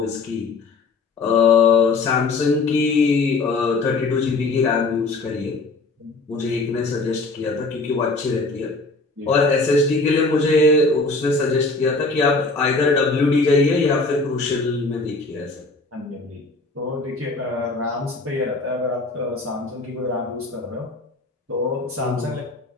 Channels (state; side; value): quieter; right; 3.6 dB